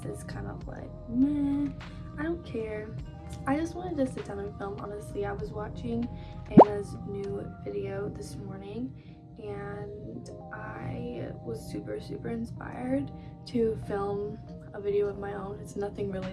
is kind of like meh. I don't care. I just wanted to sit down and film. Honestly, I was watching Anna's new video this morning and I was super inspired to film a video of my own. It's nothing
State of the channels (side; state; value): both; identical; correlation 1.00